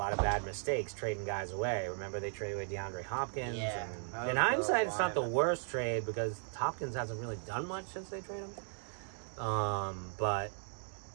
of bad mistakes trading guys away. Remember, they traded away DeAndre Hopkins. Yeah, And in hindsight, it's not the worst trade, because Hopkins hasn't really done much since they traded him. But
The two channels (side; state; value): left; silent; 53 dB below the other